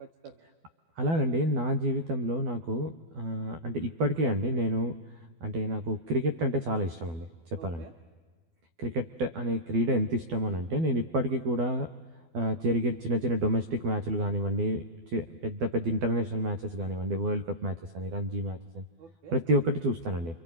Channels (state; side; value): late; left; 12 ms